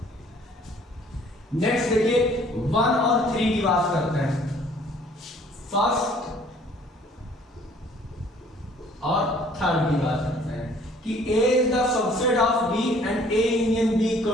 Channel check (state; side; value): normal; both; correlation 0.57